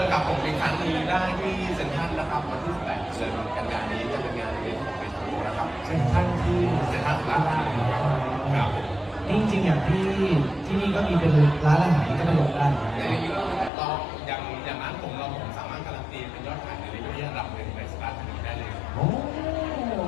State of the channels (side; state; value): right; drops out; at 13.7 s